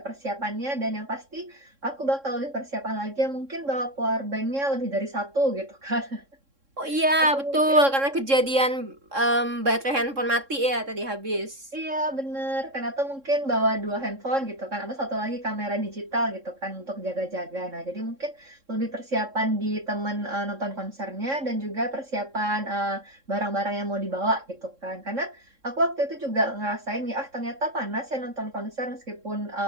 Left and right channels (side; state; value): left; late; 3.6 ms